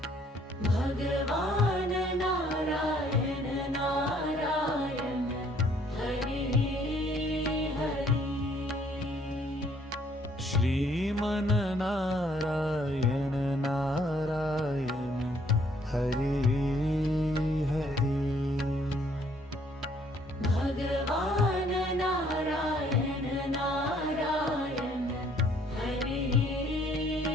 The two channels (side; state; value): both; normal; correlation 0.63